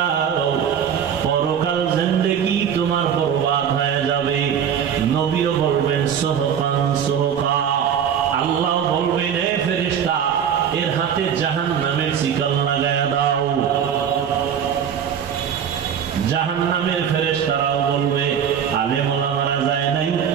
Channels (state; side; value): quieter; left; 8.2 dB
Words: পরকাল জিন্দেগি তোমার বরবাদ হয়ে যাবে। নবীও বলবেন সুহকান সুহকা, আল্লাহ বলবেন এ ফেরেশতা এর হাতে জাহান্নামের শিকল লাগায়া দাও। জাহান্নামের ফেরেশতারাও বলবে আলেম ওলামারা যায় নাই,